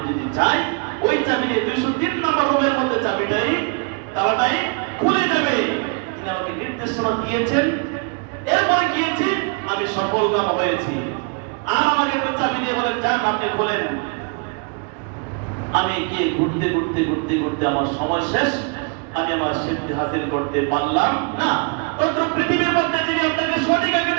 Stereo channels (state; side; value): quieter; left; 34.3 dB